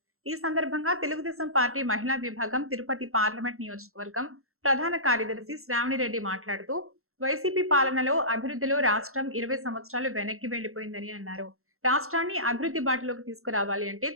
ఈ సందర్భంగా తెలుగుదేశం పార్టీ మహిళా విభాగం తిరుపతి పార్లమెంట్ నియోజకవర్గం ప్రధాన కార్యదర్శి శ్రావణిరెడ్డి మాట్లాడుతూ వైసీపీ పాలనలో అభివృద్ధిలో రాష్ట్రం 20 సంవత్సరాలు వెనక్కి వెళ్లిపోయిందని అన్నారు. రాష్ట్రాన్ని అభివృద్ధి బాటలోకి తీసుకురావాలి అంటే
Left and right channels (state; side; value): late; left; 0.62 ms